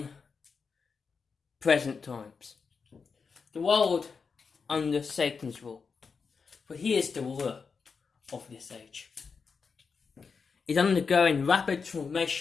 times. The world under Satan's rule, for he is the ruler of this age, is undergoing rapid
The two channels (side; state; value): right; quieter; 5.3 dB